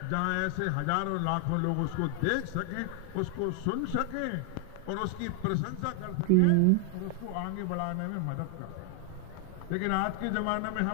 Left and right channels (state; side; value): different; both; correlation 0.00